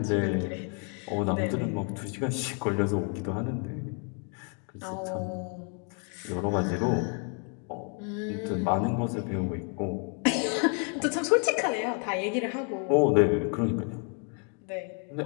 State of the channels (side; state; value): right; quieter; 39.6 dB